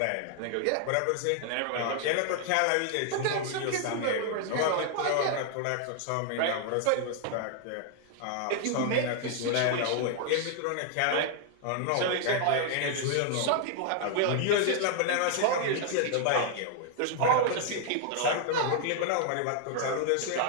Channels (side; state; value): both; different; correlation 0.00